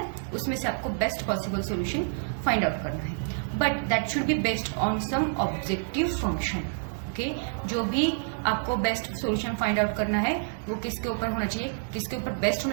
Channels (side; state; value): left; silent; digital silence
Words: उसमें से आपको best possible solution find out करना है. But that should be based on some objective function. Okay, जो भी आपको बेस्ट सॉल्यूशन फाइंड आउट करना है वो किसके ऊपर होना चाहिए, किसके ऊपर बेस्ट